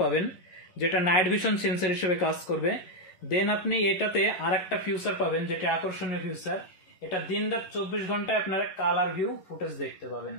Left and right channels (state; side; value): late; right; 11 ms